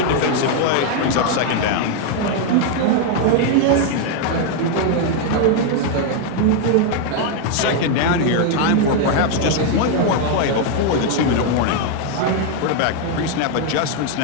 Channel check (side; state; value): both; different; correlation 0.01